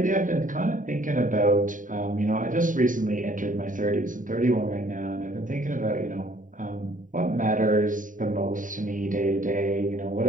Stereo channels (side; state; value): left; late; 0.38 ms